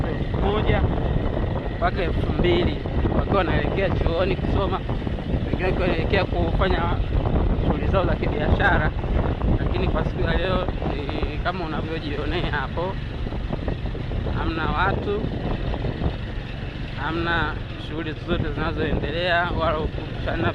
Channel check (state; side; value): identical; both; correlation 1.00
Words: 1000 mpaka 2000 wakiwa wanaelekea chuoni kusoma, wengine wanaelekea kufanya shughuli zao za kibiashara. Lakini kwa siku ya leo kama unavyojionea hapo, hamna watu, hamna shughuli zote zinazoendelea, wala kushana